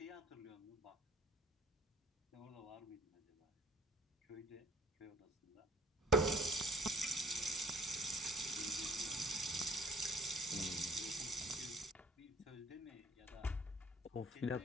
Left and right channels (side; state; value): both; normal; correlation 0.55